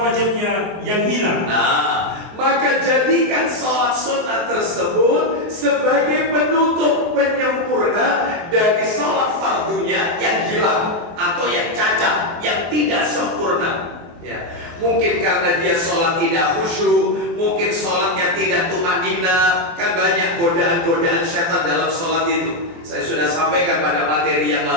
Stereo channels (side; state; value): left; late; 23 ms